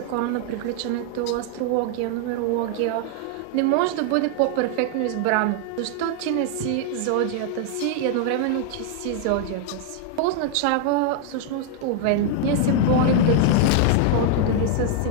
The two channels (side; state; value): both; different; correlation 0.00